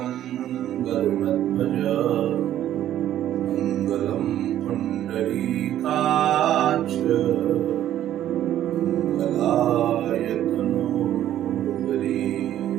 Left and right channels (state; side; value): quieter; left; 12.0 dB